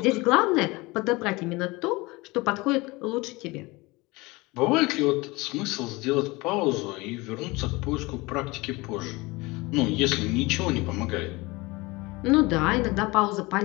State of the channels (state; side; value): quieter; right; 23.3 dB